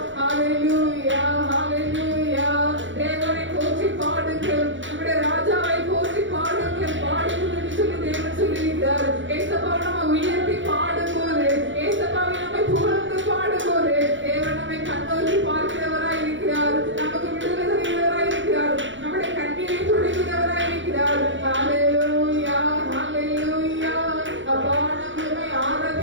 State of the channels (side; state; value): left; late; 0.55 ms